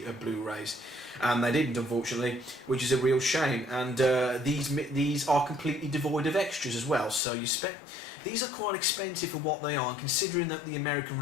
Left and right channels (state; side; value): drops out; right; at 7.2 s